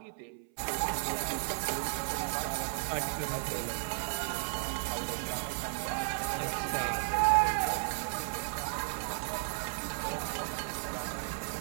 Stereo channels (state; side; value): silent; left; 55 dB below the other